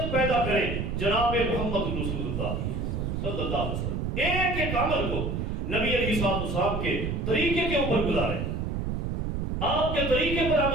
پیدا کریں جناب محمد رسول اللہ صلی اللہ علیہ وسلم۔ ایک ایک عمل کو نبی علیہ السلام کے طریقے کے اوپر گزاریں، آپ کے طریقے پر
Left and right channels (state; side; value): noise; right; rumble, 2 dB below the sound